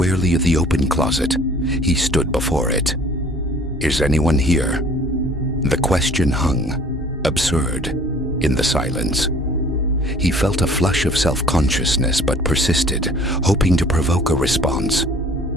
at the open closet, he stood before it. "Is anyone here?" The question hung, absurd, in the silence. He felt a flush of self-consciousness but persisted, hoping to provoke a response.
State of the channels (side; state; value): both; normal; correlation 0.52